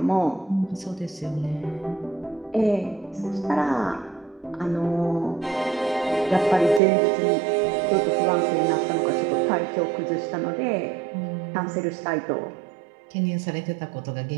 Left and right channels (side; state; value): left; drops out; at 6.8 s